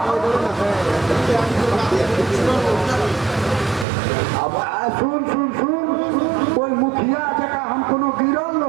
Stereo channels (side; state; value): left; drops out; at 3.9 s